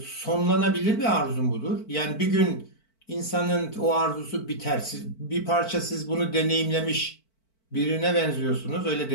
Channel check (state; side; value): late; right; 4.5 ms